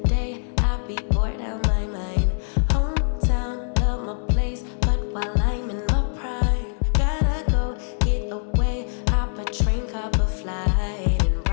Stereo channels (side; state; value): right; silent; digital silence